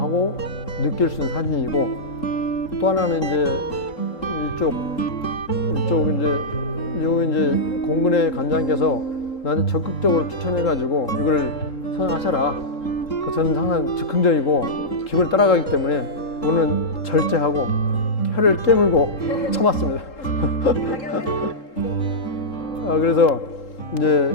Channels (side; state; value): right; late; 3.8 ms